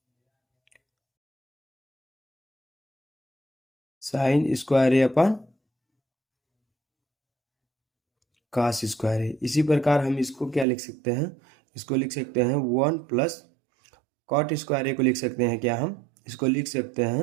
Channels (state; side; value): drops out; left; at 10.7 s